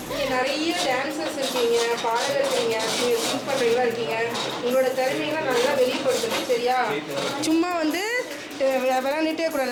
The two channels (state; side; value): identical; both; correlation 1.00